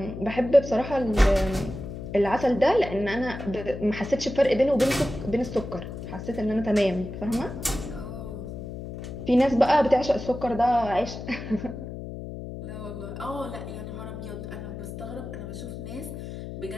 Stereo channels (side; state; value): left; noise; hum, 9 dB below the sound